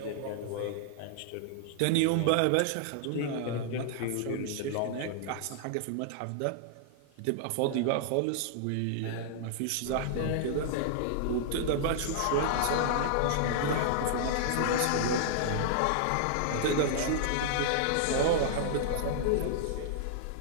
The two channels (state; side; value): different; both; correlation -0.01